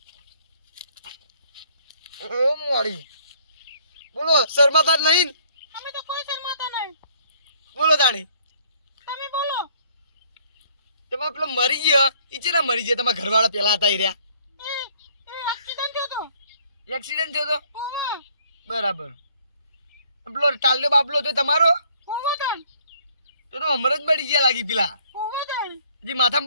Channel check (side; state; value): both; inverted; correlation -0.62